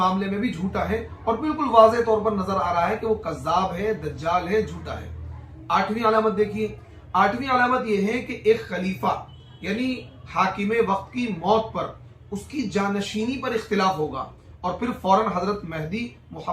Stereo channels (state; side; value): identical; both; correlation 1.00